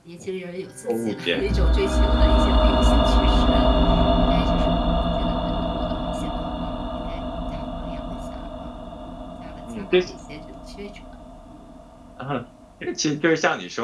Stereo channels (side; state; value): both; identical; correlation 1.00